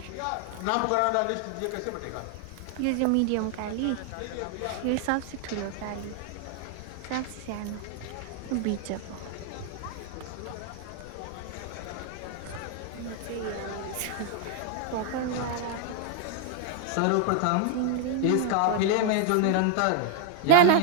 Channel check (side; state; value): both; different; correlation 0.00